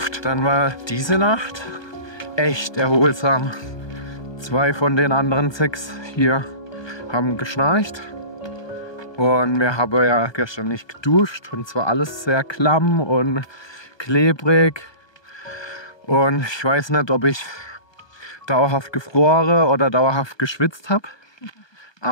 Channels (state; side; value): late; right; 1.2 ms